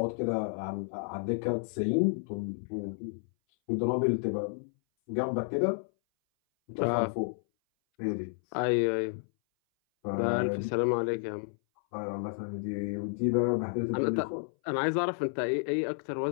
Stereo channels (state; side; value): silent; right; 57 dB below the other